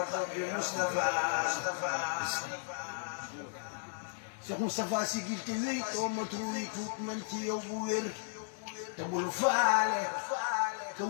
bi Mustafa Cheikh Mustafa sigil te wéy too matru wi tuut man ci yow bu wér te bul faale ka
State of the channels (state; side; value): silent; right; digital silence